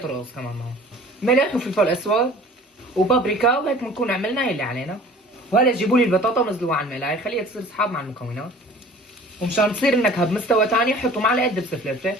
كمان معه. ملح وفلفل اسود وبابريكا، وهيك بنكون عملنا اللي علينا. وهلا جيبوا لي البطاطا ونزلوها على المقلايه، خليها تصير صحاب مع المكونات. ومشان تصير النكهه بمستوى ثاني حطوا معلقه دبس فلفل.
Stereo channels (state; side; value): normal; both; correlation 0.47